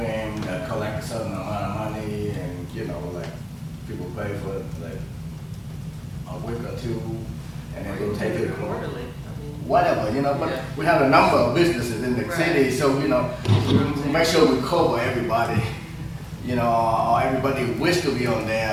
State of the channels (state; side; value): identical; both; correlation 1.00